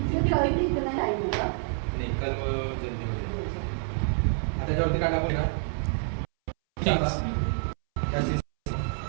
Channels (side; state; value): left; silent; 60 dB below the other